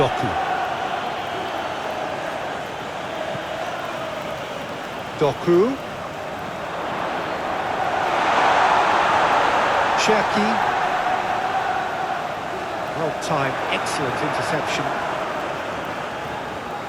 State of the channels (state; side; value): identical; both; correlation 1.00